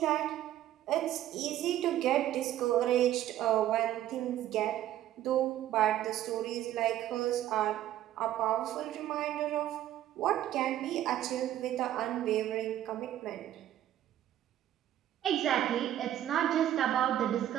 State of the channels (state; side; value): quieter; left; 12.5 dB